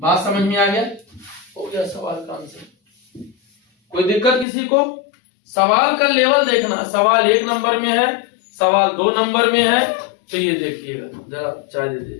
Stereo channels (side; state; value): right; drops out; at 4.5 s